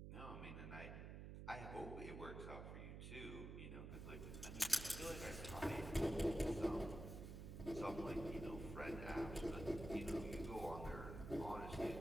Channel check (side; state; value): right; noise; hum, 7 dB below the sound